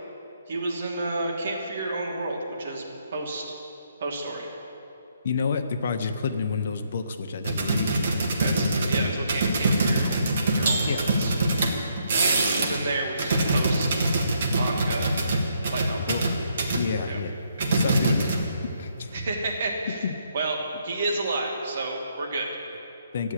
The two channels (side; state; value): both; inverted; correlation -0.73